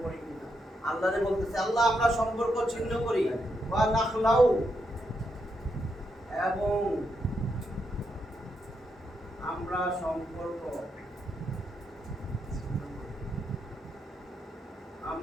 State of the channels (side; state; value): both; normal; correlation 0.81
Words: পড়ি কিনা। আল্লাহরে বলতেছে, আল্লাহ আমরা সম্পর্ক ছিন্ন করি। ওয়া নাখলাউ এবং আমরা সম্পর্ক,